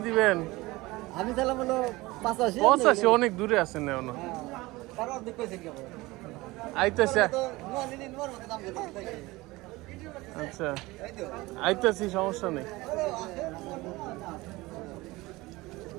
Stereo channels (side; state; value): left; quieter; 20.8 dB